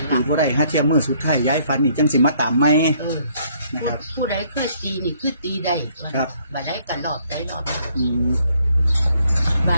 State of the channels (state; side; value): inverted; both; correlation -0.66